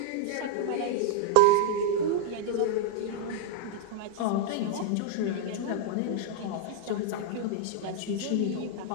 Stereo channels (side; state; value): both; different; correlation -0.01